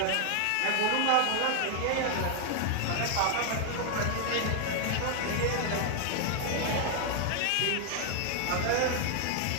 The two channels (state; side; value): different; both; correlation 0.00